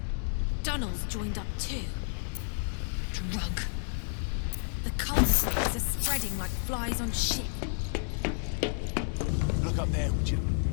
Donald's joined up too. Drug. The cult slaves are spreading like flies on shit. Look up there, would you?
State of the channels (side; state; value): right; silent; digital silence